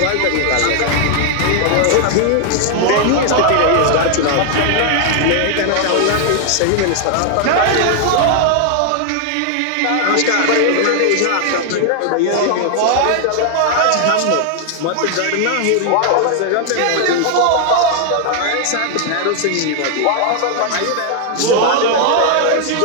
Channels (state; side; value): different; both; correlation 0.00